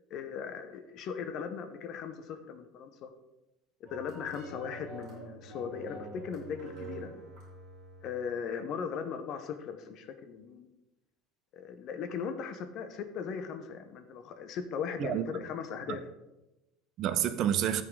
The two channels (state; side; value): normal; both; correlation 0.39